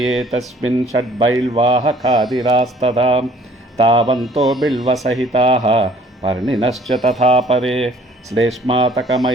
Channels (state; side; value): normal; both; correlation 0.56